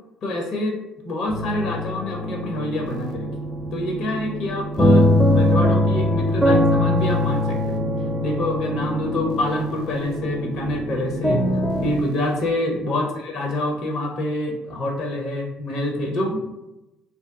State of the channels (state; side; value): normal; both; correlation 0.62